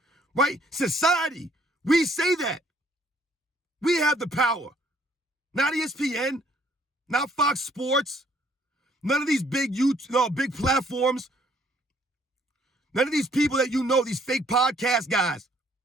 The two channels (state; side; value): normal; both; correlation 0.64